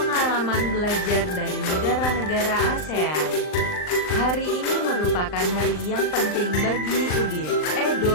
belajar dari negara-negara ASEAN. Hari ini merupakan hari yang penting bagi Udin,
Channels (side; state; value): right; late; 39 ms